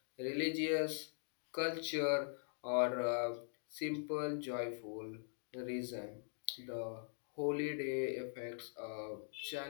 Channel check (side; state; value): right; silent; digital silence